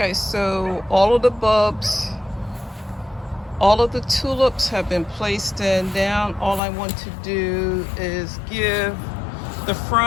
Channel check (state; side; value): drops out; right; at 6.6 s